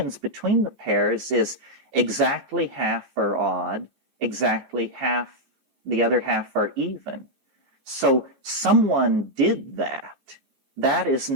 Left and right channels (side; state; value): left; late; 15 ms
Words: between the pairs is exactly half are odd, exactly half, the other half are even. So someone did that. That is